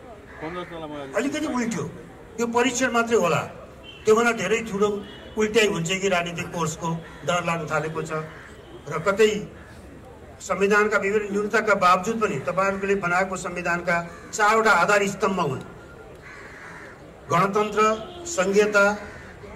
अलिकति उल्ट्यो। यो परीक्षण मात्रै होला, त्योभन्दा धेरै ठुलो उल्ट्याइ हुन्छ कि राजनीतिक कोर्सको डर लाग्न थालेको छ। र कतै संविधानका विभिन्न न्यूनताका बावजुद पनि तपाईँहरूले बनाएको संविधानका 4वटा आधार स्तम्भ हुन्: गणतन्त्र, संघीयता,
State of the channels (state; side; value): identical; both; correlation 1.00